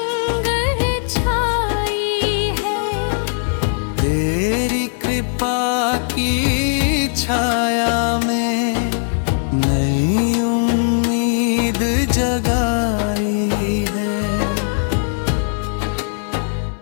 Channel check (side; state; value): right; silent; 57 dB below the other